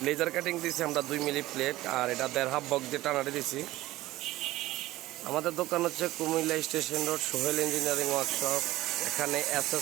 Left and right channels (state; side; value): quieter; left; 16.9 dB